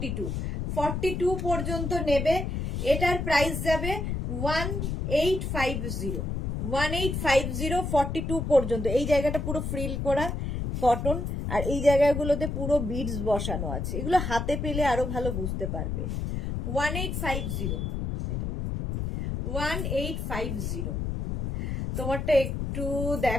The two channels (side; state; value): left; noise; rumble, 2 dB below the sound